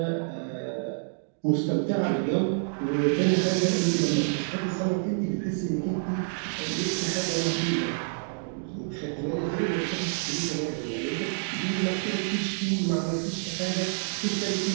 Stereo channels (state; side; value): silent; left; digital silence